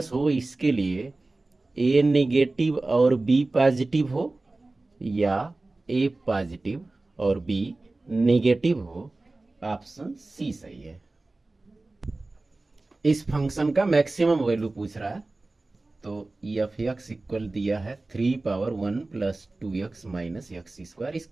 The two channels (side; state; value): left; quieter; 3.1 dB